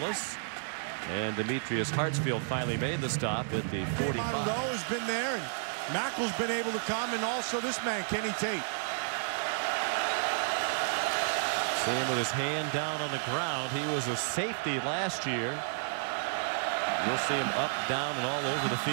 And Demetrius Hartsfield finally made the stop at the 45. Monroe has been there, and Mackel's been able to come, and also this man, Kenny Tate. See him with his hand down on the ground. He was a safety last year. You'll see him up, down, and all over the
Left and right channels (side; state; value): left; silent; digital silence